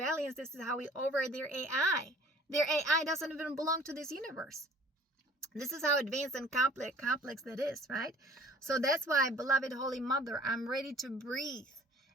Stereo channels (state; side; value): normal; both; correlation 0.51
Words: This is how we override their AI. Their AI doesn't even belong to this universe. This is how advanced and complex that is, right? So that's why, beloved Holy Mother, I'm ready to breathe